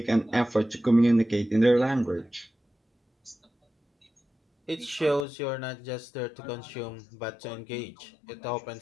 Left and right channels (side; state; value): right; drops out; at 5.2 s